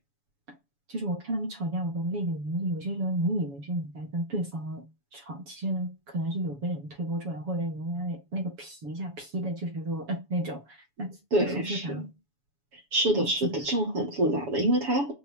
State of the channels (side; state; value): left; late; 7.1 ms